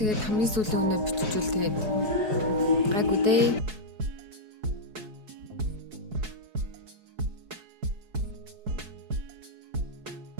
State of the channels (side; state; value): left; late; 4.7 ms